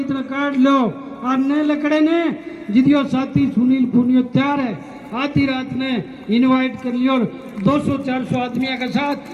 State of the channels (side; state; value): both; identical; correlation 1.00